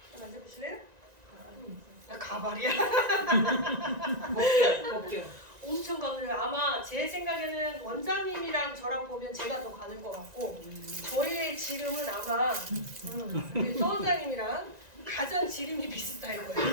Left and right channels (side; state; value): left; late; 1.9 ms